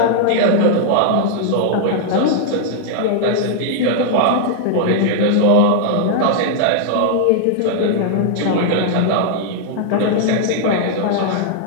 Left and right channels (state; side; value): different; both; correlation -0.01